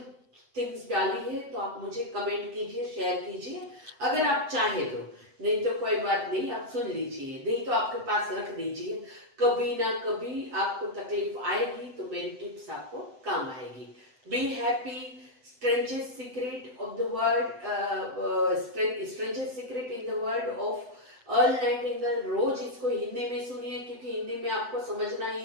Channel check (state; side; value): late; left; 7.9 ms